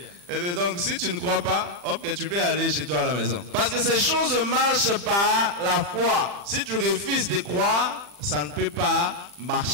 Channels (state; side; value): late; left; 40 ms